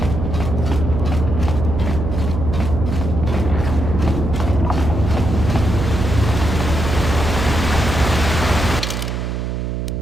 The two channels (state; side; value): noise; right; hum, 3 dB below the sound